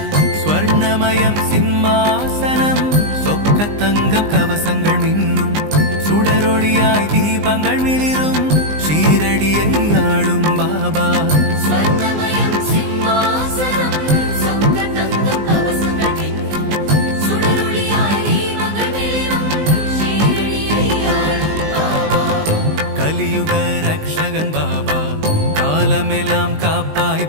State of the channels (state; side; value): late; left; 19 ms